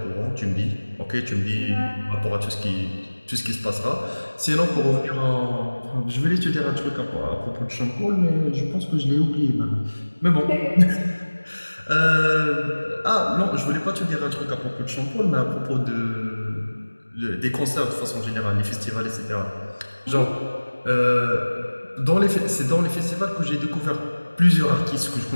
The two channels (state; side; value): inverted; both; correlation -1.00